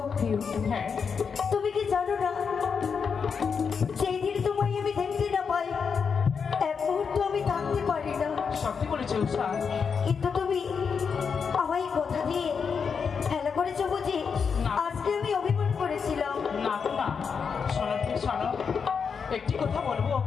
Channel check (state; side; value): quieter; right; 6.1 dB